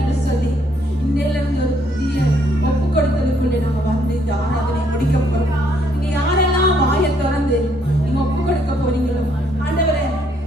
சொல்லி இன்னையில இருந்து ஒரு புதிய ஒப்பு கொடுத்ததுக்குள்ளே நாங்க வந்து இந்த ஆராதனை முடிக்க போறோம். நீங்க யாரெல்லாம் வாயை திறந்து நீங்க ஒப்பு கொடுக்க போறீங்களோ, ஆண்டவரே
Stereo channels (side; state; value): both; normal; correlation 0.69